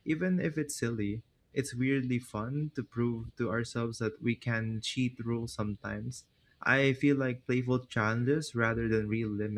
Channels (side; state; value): both; identical; correlation 1.00